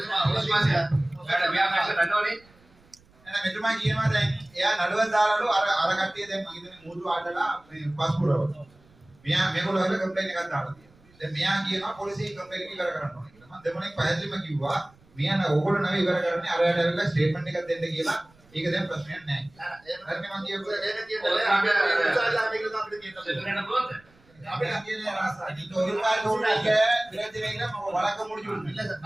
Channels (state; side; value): noise; right; rumble, 29 dB below the sound